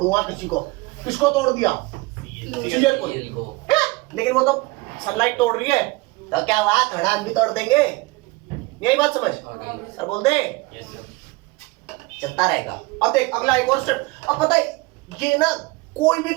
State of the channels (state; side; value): quieter; left; 23.4 dB